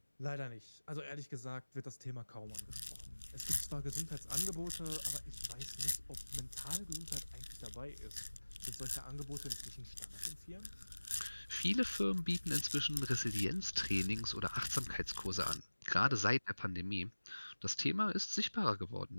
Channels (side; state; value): both; inverted; correlation -1.00